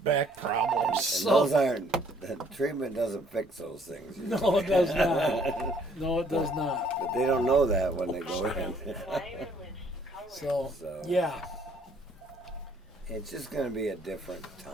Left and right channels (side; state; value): both; normal; correlation 0.63